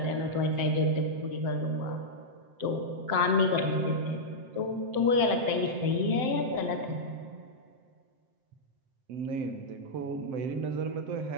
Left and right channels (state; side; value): late; left; 7.7 ms